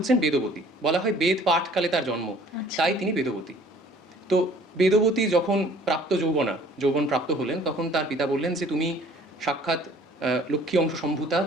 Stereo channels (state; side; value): normal; both; correlation 0.54